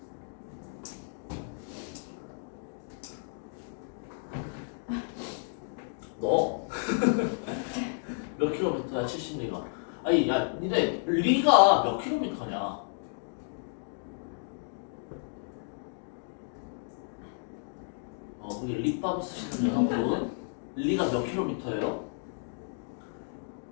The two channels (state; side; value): silent; right; digital silence